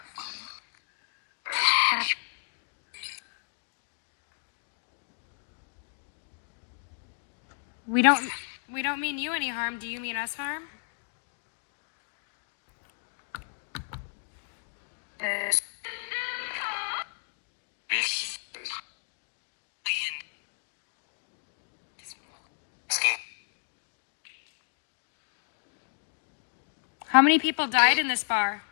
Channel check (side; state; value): right; silent; digital silence